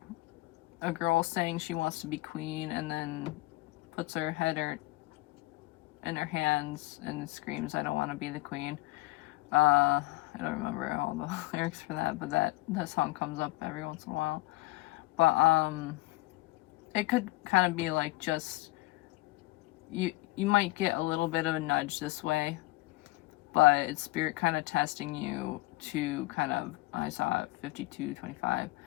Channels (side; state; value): right; quieter; 20.1 dB